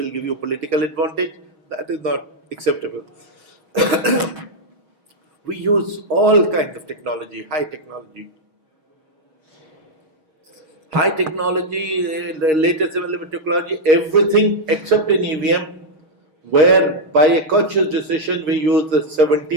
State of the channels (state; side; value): late; left; 6.3 ms